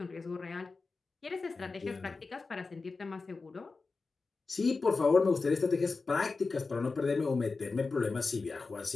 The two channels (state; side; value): quieter; right; 4.1 dB